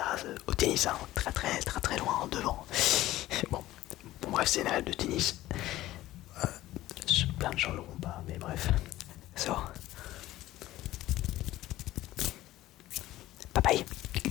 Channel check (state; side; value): quieter; right; 15.7 dB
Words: au tennis, hein, très loin devant. Bon, bref, c'est une règle de tennis. Plein de gens l'auront pas, mais bref. So. Bye bye.